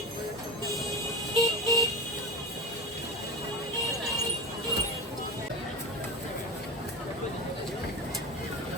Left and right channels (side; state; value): both; normal; correlation 0.23